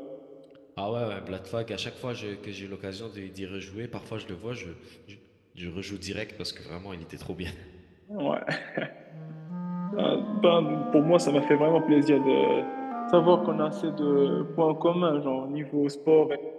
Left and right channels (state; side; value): identical; both; correlation 1.00